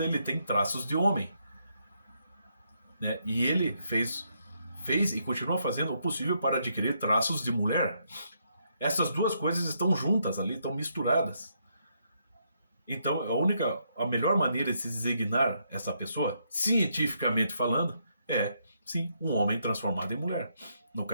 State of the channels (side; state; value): both; inverted; correlation -0.76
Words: ele tem traços de homem. Né? E ele fez e continua fazendo o possível para adquirir traços de mulher. Essas duas coisas estão juntas ali, estão misturadas. Então, a melhor maneira de se designar essa pessoa, cientificamente falando, é, sim, um homem transformado em mulher. No